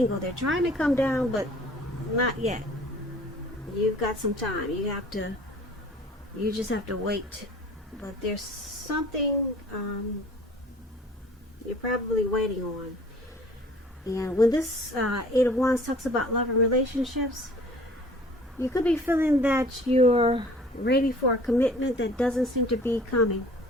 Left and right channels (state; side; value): normal; both; correlation 0.50